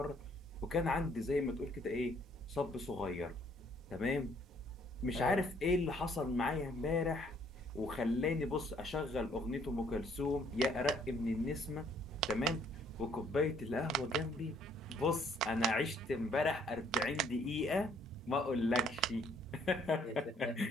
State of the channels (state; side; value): normal; both; correlation 0.64